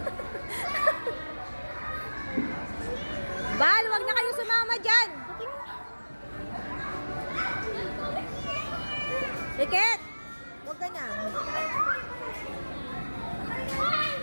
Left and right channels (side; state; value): both; inverted; correlation -1.00